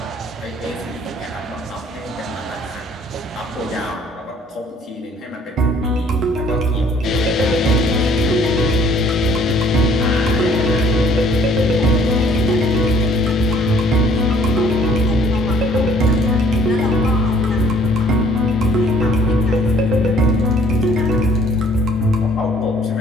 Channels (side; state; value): both; normal; correlation 0.59